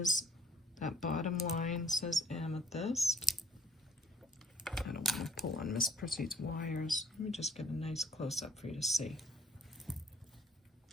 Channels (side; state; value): both; normal; correlation 0.59